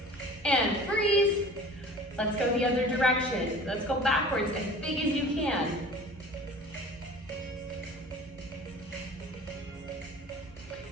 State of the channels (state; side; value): normal; both; correlation 0.43